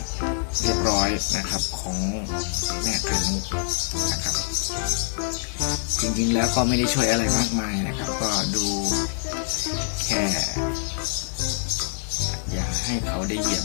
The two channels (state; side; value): silent; right; digital silence